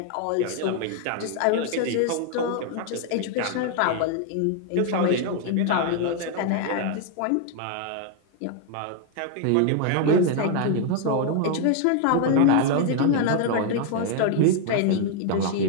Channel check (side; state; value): both; different; correlation 0.01